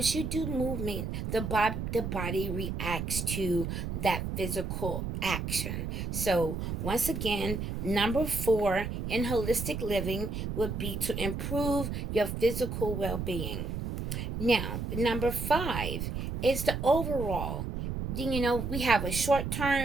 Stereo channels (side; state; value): right; noise; rumble, 4 dB below the sound